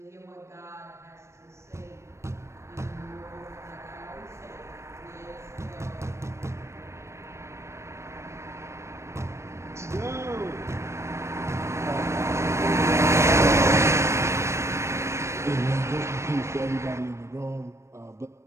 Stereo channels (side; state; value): left; late; 0.13 ms